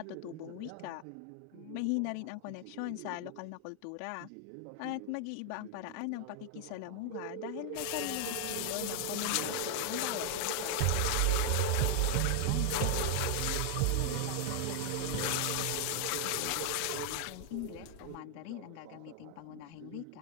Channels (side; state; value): both; different; correlation 0.00